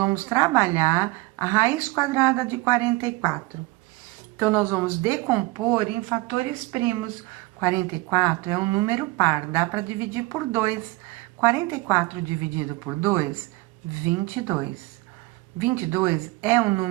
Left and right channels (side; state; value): left; quieter; 21.6 dB